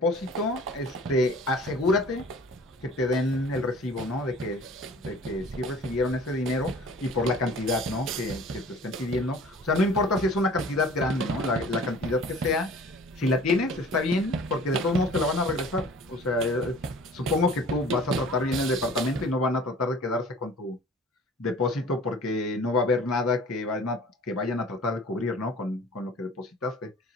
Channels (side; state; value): both; normal; correlation 0.47